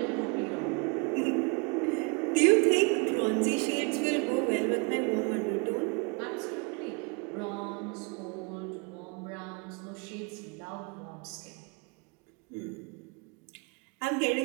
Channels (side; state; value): left; quieter; 32.1 dB